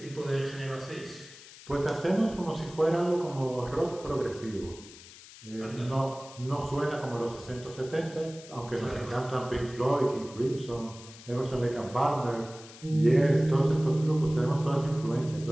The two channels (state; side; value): noise; left; hiss, 18 dB below the sound